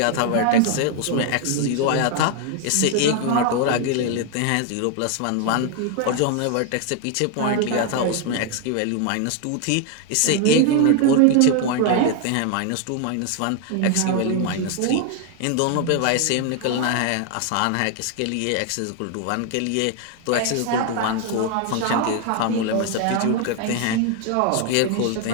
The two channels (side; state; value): both; different; correlation 0.00